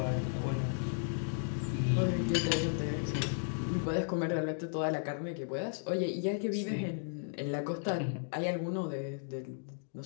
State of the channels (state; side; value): silent; right; digital silence